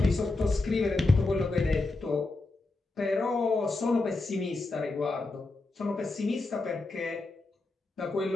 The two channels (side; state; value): right; quieter; 3.2 dB